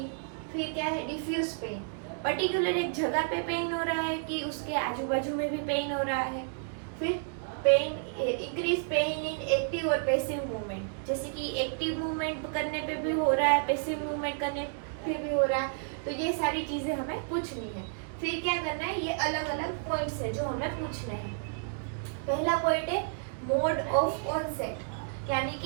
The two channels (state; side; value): silent; left; digital silence